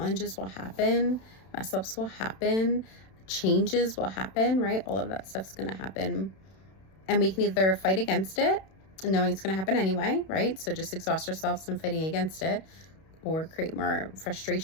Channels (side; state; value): right; late; 31 ms